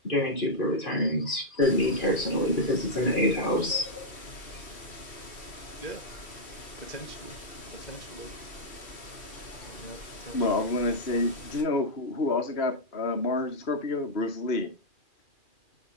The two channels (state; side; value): late; right; 2.4 ms